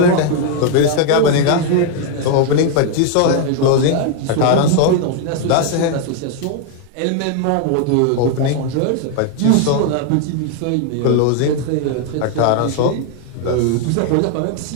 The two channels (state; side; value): different; both; correlation 0.00